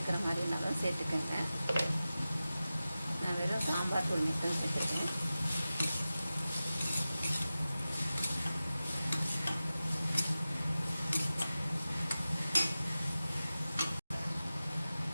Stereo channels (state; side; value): inverted; both; correlation -0.95